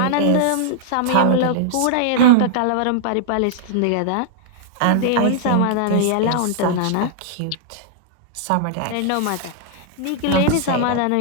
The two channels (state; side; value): different; both; correlation -0.01